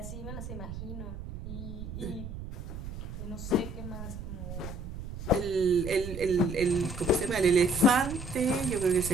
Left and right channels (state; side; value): noise; right; rumble, 9 dB below the sound